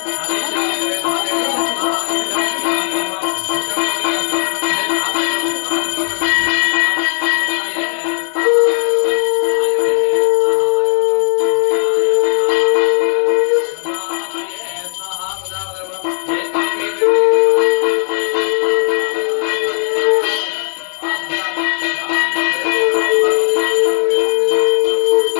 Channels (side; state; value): right; silent; 57 dB below the other